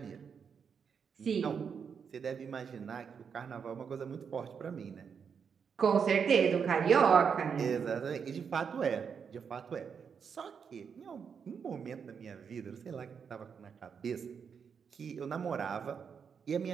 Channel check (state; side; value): quieter; left; 6.6 dB